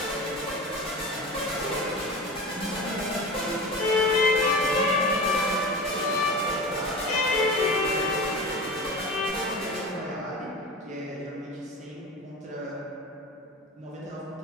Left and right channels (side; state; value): both; normal; correlation 0.31